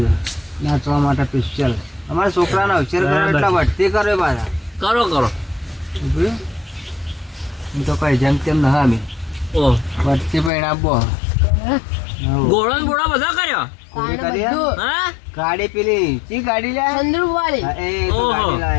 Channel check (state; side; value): drops out; right; at 10.5 s